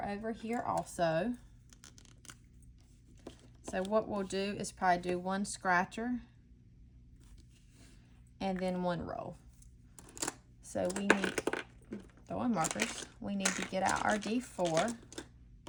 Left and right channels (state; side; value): identical; both; correlation 1.00